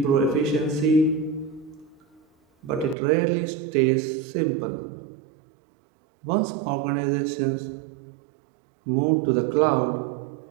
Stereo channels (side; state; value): left; drops out; at 3.0 s